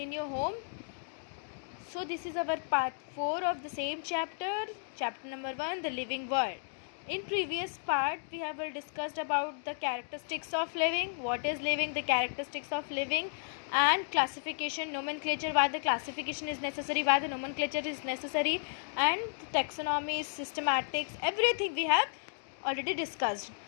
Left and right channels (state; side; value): silent; right; digital silence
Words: your home. So, this is our part 4 of the same chapter, chapter number 1, the living world. In previous part, we have discussed about the characteristics of living, what is living, the characteristics of living, and classification, nomenclature, why the classification is necessary, why the nomenclature is necessary, and taxonomy, systematics, everything we have already discussed.